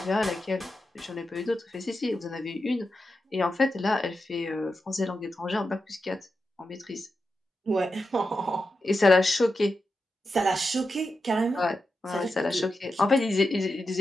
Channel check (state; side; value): normal; both; correlation 0.89